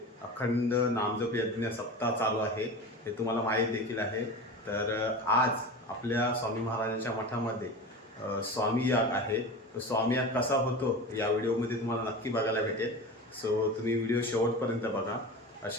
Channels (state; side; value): normal; both; correlation 0.30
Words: अखंड नामजप यज्ञ सप्ताह चालू आहे, हे तुम्हाला माहीत देखील आहे. तर आज आपल्या स्वामी महाराजांच्या मठामध्ये स्वामी याग आहे. तो स्वामी याग कसा होतो या व्हिडिओमध्ये तुम्हाला नक्की बघायला भेटेल. सो तुम्ही व्हिडिओ शेवटपर्यंत बघा.